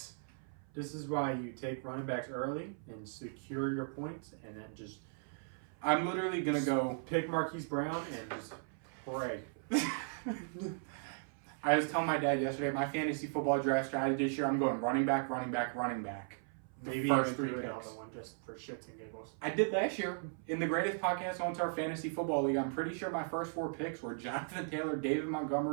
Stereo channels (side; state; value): left; silent; 53 dB below the other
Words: This is why you take running backs early and secure your points and then just I'm literally gonna go. Pick Marquise Brown and just pray. I was telling my dad yesterday, my fantasy football draft strategy this year, I'm going running back, running back, running back. Maybe first even 3 do another picks. one just for shits and giggles. I did last year in the greatest podcast on our fantasy football league. I'm pretty sure my first 4 picks were Jonathan Taylor, David